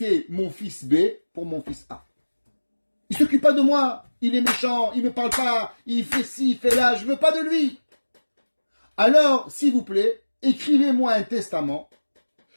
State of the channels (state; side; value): inverted; both; correlation -1.00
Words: mon fils B pour mon fils A. Il ne s'occupe pas de moi. Il est méchant, il ne me parle pas, il fait ci, il fait là, je ne veux pas de lui. Alors, s'il vous plaît, écrivez-moi un testament